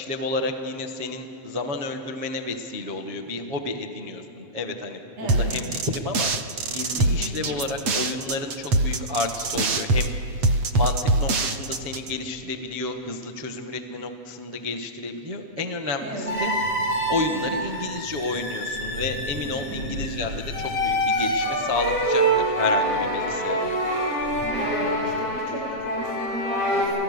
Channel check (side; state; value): left; late; 8.0 ms